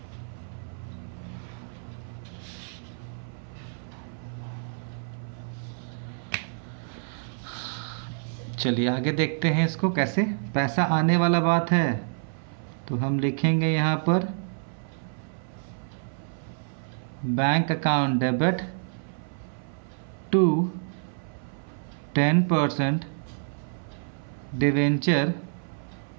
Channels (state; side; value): silent; left; 59 dB below the other